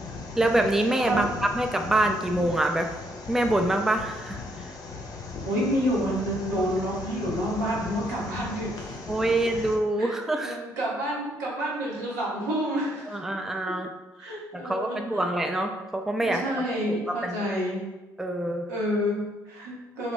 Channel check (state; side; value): normal; both; correlation 0.73